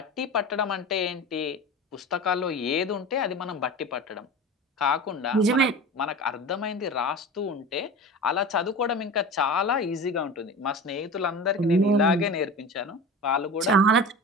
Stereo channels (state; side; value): normal; both; correlation 0.32